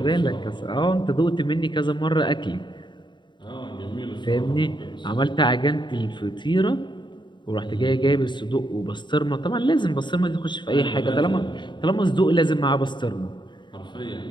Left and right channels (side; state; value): right; late; 0.22 ms